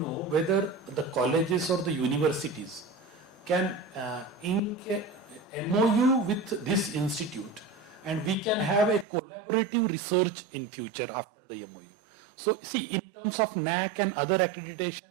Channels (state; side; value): drops out; left; at 9.1 s